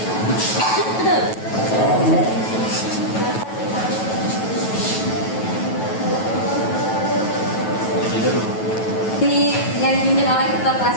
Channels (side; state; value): right; late; 9.2 ms